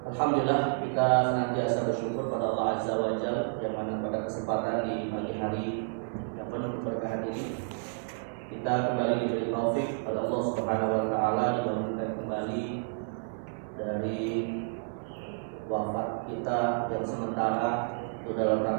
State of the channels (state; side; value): silent; left; 58 dB below the other